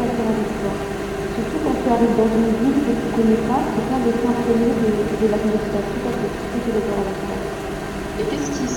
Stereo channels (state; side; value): identical; both; correlation 1.00